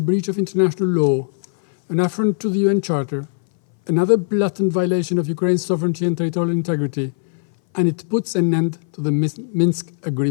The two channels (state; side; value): silent; right; 60 dB below the other